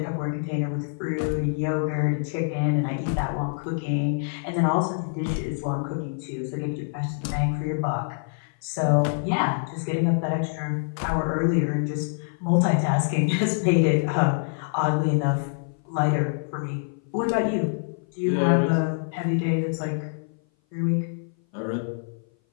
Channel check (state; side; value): silent; right; 57 dB below the other